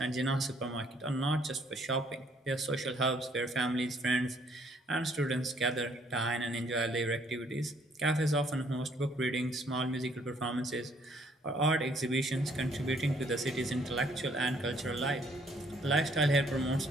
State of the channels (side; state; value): both; normal; correlation 0.65